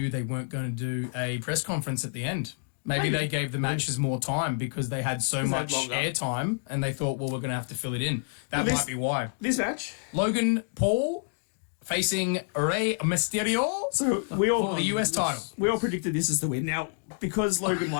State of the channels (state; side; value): silent; right; digital silence